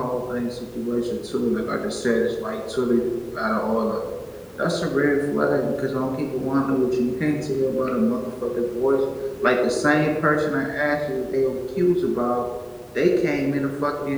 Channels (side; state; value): both; identical; correlation 1.00